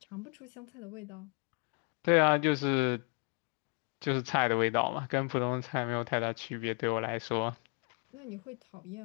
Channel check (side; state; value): right; quieter; 38.3 dB